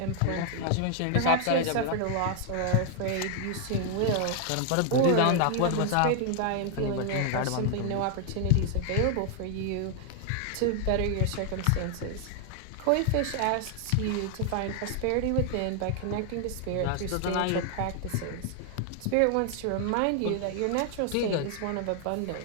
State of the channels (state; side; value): different; both; correlation 0.00